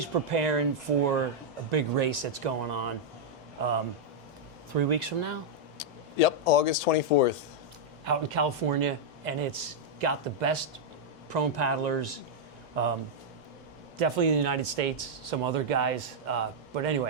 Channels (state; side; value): normal; both; correlation -0.04